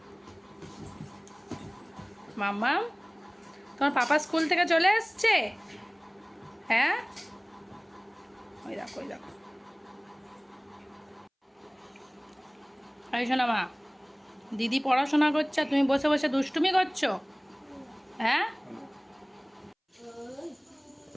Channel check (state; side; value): identical; both; correlation 1.00